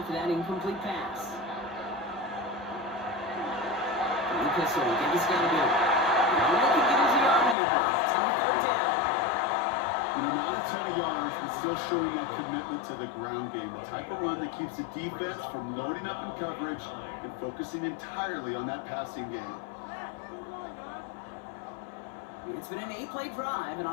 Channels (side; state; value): right; drops out; at 7.6 s